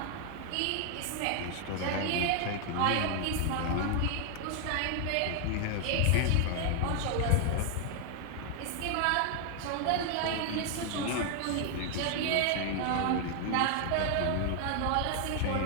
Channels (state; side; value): different; both; correlation 0.00